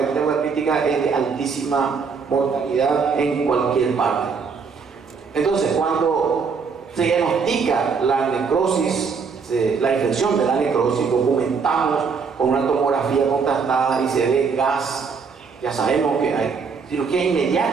hepática es de altísima mortalidad en cualquier parte. Entonces, cuando se diagnostica la necrosis, la infección de la necrosis, documentamos con una tomografía contrastada y se ve gas, ya sabemos que hay cirugía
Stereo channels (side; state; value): left; quieter; 5.5 dB